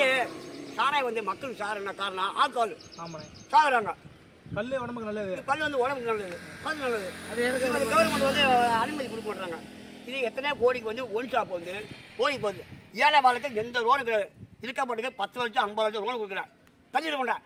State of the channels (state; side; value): identical; both; correlation 1.00